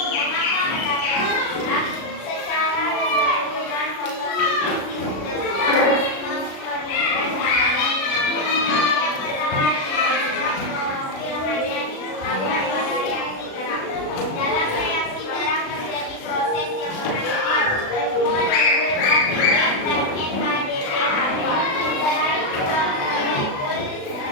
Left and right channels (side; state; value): right; late; 36 ms